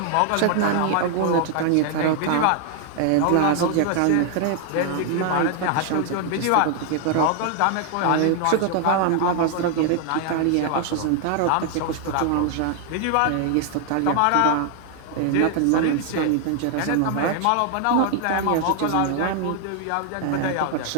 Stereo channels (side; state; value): both; different; correlation 0.00